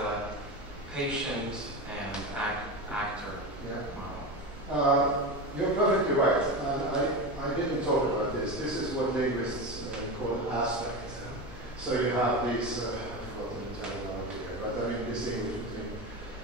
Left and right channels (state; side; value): normal; both; correlation 0.22